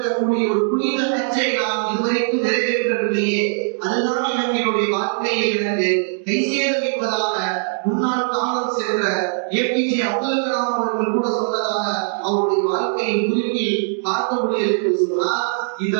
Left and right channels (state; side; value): silent; left; digital silence